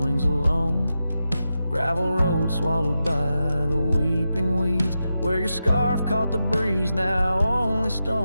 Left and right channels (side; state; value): both; inverted; correlation -0.89